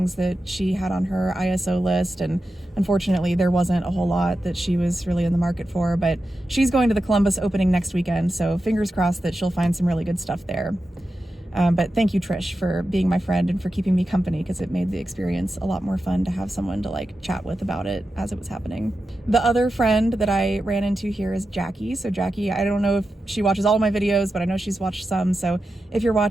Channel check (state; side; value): normal; both; correlation 0.91